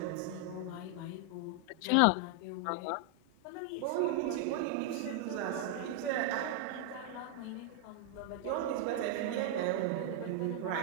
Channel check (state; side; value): different; both; correlation 0.00